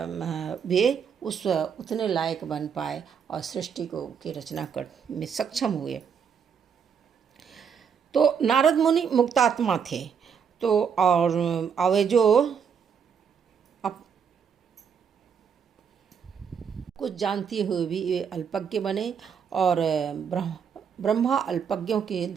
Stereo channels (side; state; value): left; quieter; 7.0 dB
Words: वे उतने लायक बन पाए और सृष्टि की रचना कर में सक्षम हुए। तो नारद मुनि मुक्तात्मा थे, तो और वे जो कुछ जानते हुए भी वे अल्पज्ञ बने, और ब्रह्मा अल्पज्ञों की